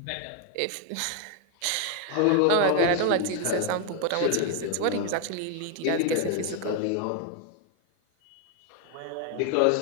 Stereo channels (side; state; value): both; different; correlation 0.01